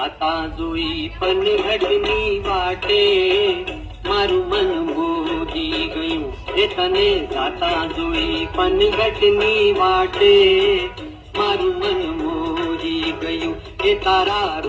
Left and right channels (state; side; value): identical; both; correlation 1.00